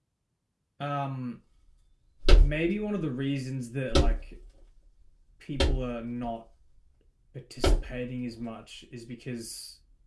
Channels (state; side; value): identical; both; correlation 1.00